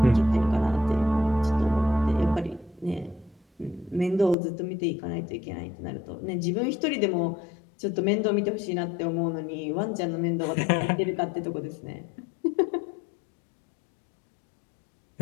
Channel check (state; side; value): drops out; right; at 4.4 s